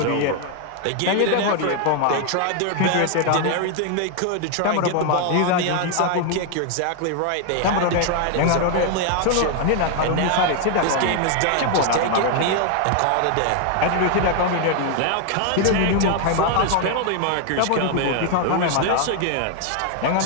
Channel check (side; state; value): both; different; correlation 0.00